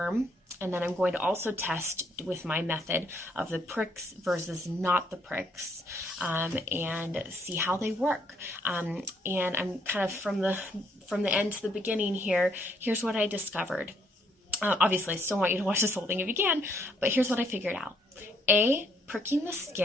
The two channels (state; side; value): normal; both; correlation 0.70